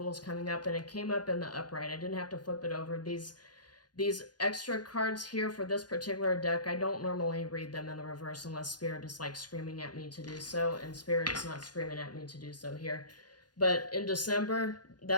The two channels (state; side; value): late; right; 0.70 ms